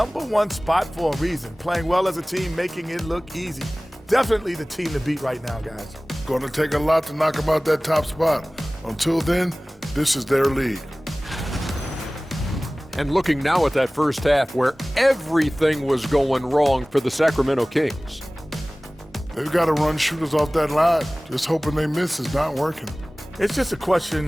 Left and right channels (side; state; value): both; normal; correlation 0.98